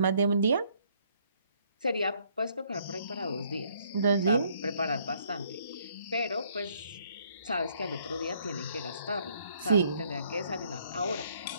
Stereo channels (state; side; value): inverted; both; correlation -0.67